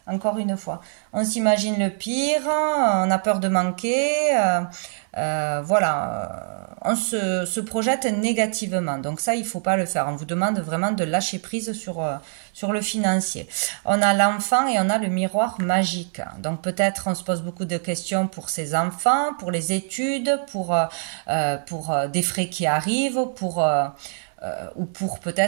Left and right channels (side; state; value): left; silent; digital silence